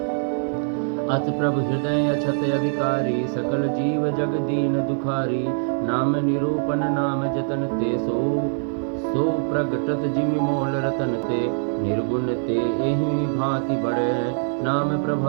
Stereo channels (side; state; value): left; silent; digital silence